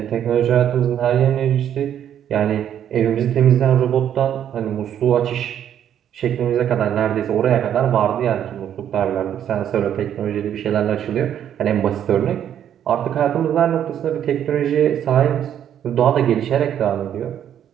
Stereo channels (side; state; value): left; quieter; 9.9 dB